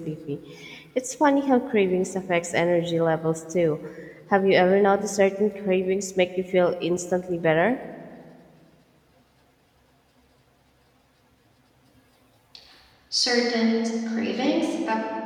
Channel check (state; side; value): identical; both; correlation 1.00